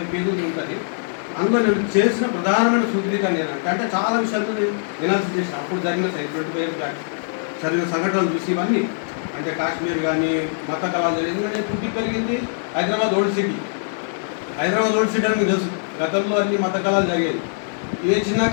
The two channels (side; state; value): right; silent; digital silence